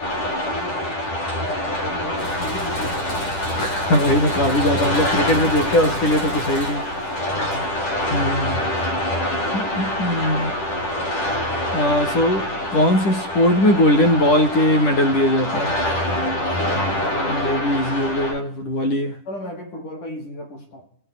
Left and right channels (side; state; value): right; late; 10 ms